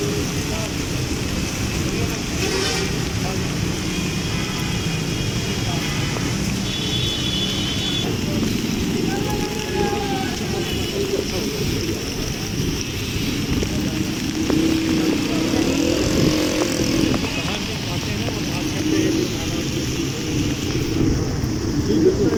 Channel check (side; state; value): both; identical; correlation 1.00